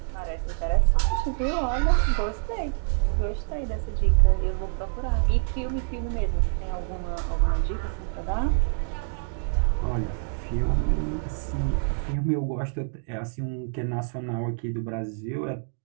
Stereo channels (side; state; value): left; silent; digital silence